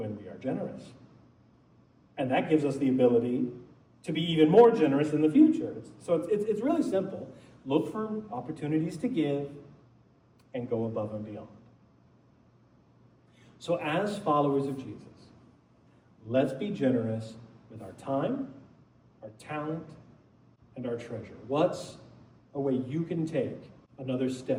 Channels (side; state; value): both; identical; correlation 1.00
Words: we are generous. And that gives us the ability to be even more generous in the future. So it's really simple. Look for opportunities to give and go above and beyond. So as followers of Jesus, let's be generous with our time, our talent, and our treasure. What's a way you can take another